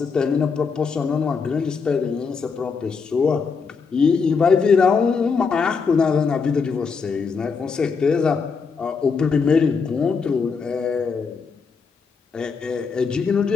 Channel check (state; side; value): quieter; right; 5.3 dB